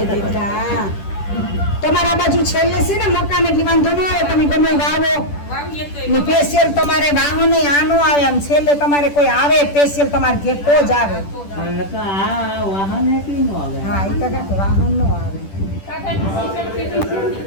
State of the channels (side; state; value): right; late; 10 ms